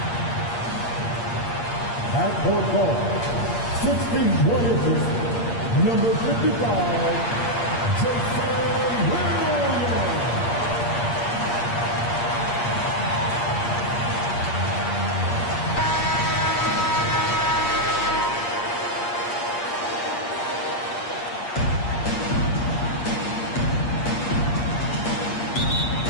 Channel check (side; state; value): right; late; 8.5 ms